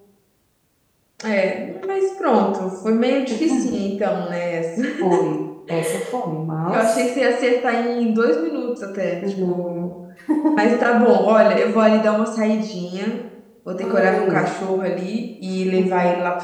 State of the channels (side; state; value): both; identical; correlation 1.00